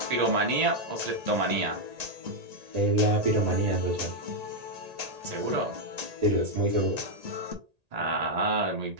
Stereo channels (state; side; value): late; left; 1.8 ms